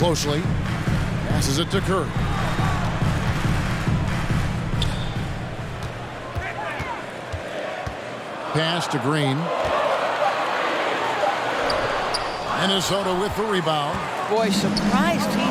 Passes it to Curry. Pass to Green. Minnesota with the rebound. Boy, surprised he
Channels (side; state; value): both; identical; correlation 1.00